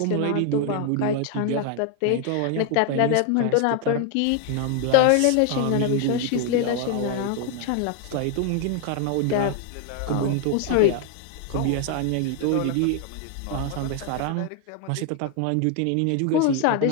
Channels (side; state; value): both; different; correlation 0.00